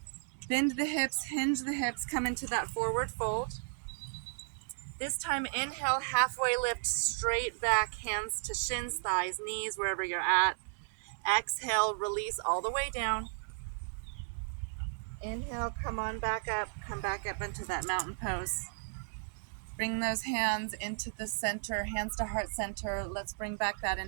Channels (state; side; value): silent; left; digital silence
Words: bend the hips, hinge the hips, come into that forward fold. This time, inhale, halfway lift, straight back, hands to shins, thighs, knees, wherever you're at. Exhale, release all the way down. Inhale, come on back up, come back up into that mountain pose. Bring those hands into the center, hands to heart center. Let's bring back that